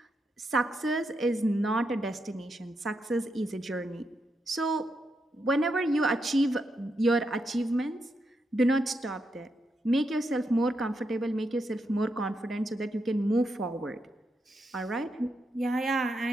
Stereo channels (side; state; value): both; normal; correlation 0.83